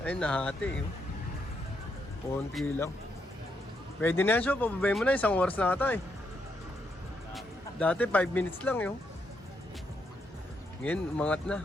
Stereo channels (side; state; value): both; normal; correlation 0.78